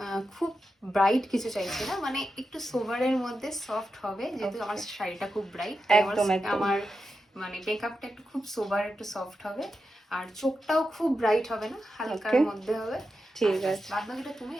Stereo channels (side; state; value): both; normal; correlation 0.89